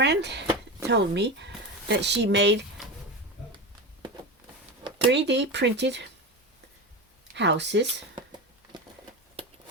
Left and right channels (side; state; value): both; normal; correlation 0.22